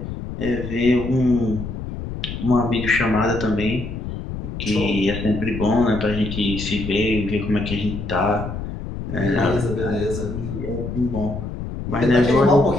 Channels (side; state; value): left; noise; rumble, 7 dB below the sound